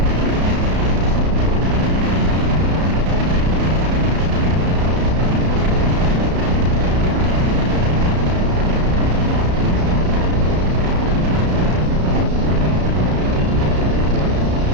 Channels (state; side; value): late; left; 33 ms